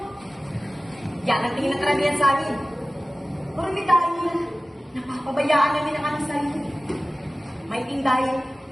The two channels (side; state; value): both; normal; correlation 0.97